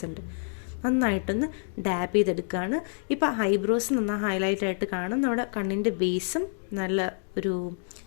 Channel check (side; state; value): right; silent; digital silence